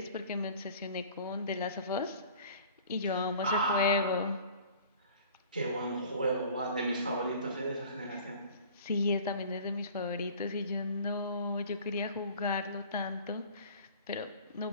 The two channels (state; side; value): inverted; both; correlation -0.46